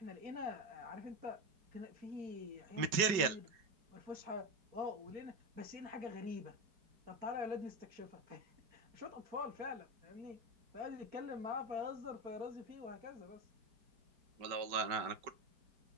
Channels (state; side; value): late; left; 5.2 ms